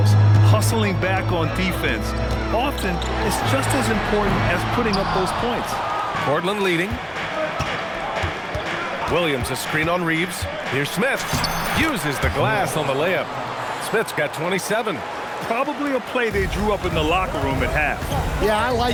hustling back on defense. Often, it's just as important as putting up those points. Portland leading. Williams a screen on Reeves. Here's Smith. Uses the glass on the layup. Smith's got 27. Probably a play they drew up in the locker room at half. Yeah, I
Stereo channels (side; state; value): both; identical; correlation 1.00